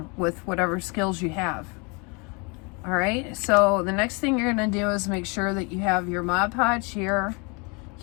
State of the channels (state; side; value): quieter; right; 31.0 dB